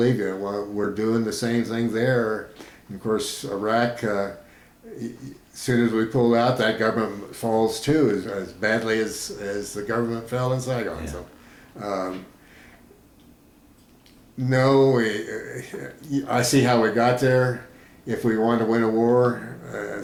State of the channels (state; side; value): identical; both; correlation 1.00